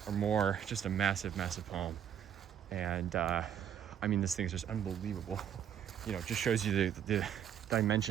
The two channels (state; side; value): quieter; left; 9.4 dB